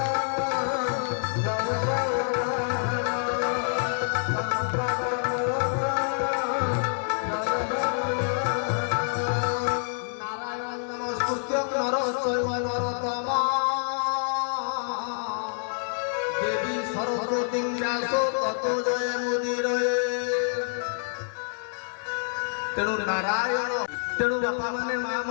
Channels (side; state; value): right; silent; 60 dB below the other